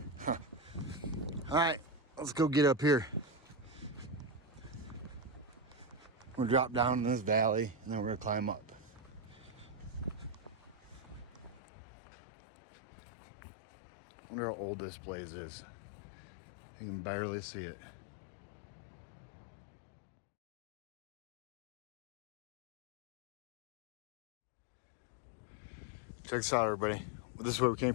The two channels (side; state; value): right; drops out; at 11.6 s